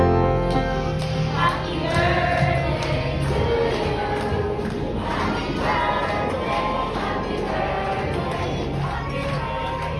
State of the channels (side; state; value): both; identical; correlation 1.00